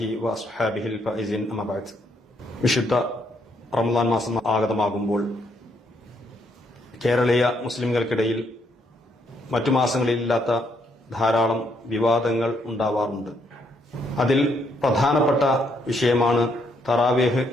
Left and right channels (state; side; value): normal; both; correlation 0.73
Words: വഅസ്ഹാബിഹിൽ ഫൈസിൻ. അമ്മാ ബഅദ്. വിശുദ്ധ റമളാൻ മാസം ആഗതമാകുമ്പോൾ കേരളീയ മുസ്ലിംകൾക്കിടയിൽ മറ്റു മാസങ്ങളിലില്ലാത്ത ധാരാളം വിവാദങ്ങൾ ഉണ്ടാവാറുണ്ട്. അതിൽ പ്രധാനപ്പെട്ട വിഷയമാണ് തറാവീഹ്